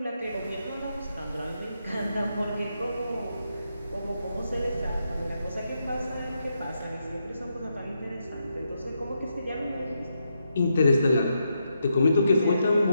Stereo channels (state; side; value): inverted; both; correlation -0.82